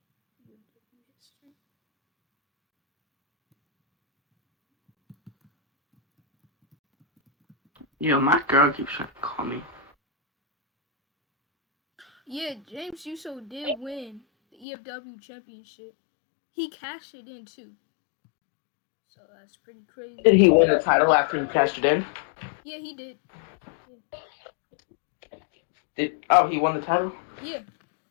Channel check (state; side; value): drops out; right; at 14.7 s